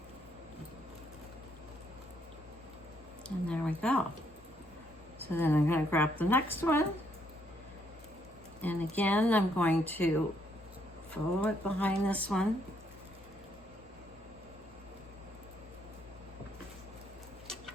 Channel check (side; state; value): both; normal; correlation 0.72